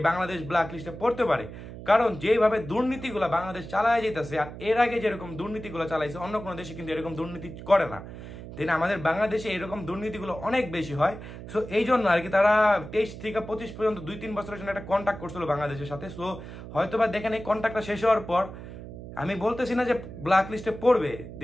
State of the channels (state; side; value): noise; right; hum, 12 dB below the sound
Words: বাংলাদেশ ব্ল্যাক লিস্টে পড়তে পারে। কারণ যেভাবে দুর্নীতিগুলো বাংলাদেশ চালায় যেতেছে, আর এর আগে যেরকম দুর্নীতিগুলো চালাইছে অন্য কোনো দেশে কিন্তু এরকম দুর্নীতি করে না, দেন আমাদের বাংলাদেশে এরকম দুর্নীতিগুলো অনেক বেশি হয়। সো এই জন্য আর কি তারা 23 থেকে 25 পর্যন্ত 2-3 বছরের জন্য একটা কন্ট্যাক্ট করছিল বাংলাদেশের সাথে। সো হয়তো বা দেখেন এই কন্ট্যাক্টটা শেষ হওয়ার পর, আমি বলতেছি না যে ব্ল্যাক লিস্টে পড়বে,